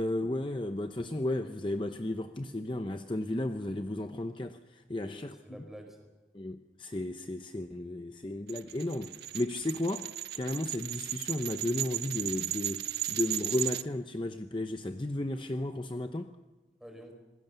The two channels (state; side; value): normal; both; correlation 0.71